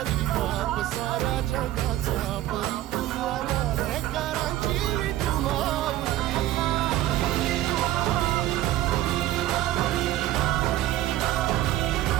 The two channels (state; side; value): quieter; left; 14.2 dB